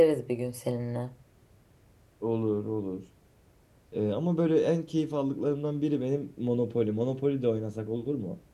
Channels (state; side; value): identical; both; correlation 1.00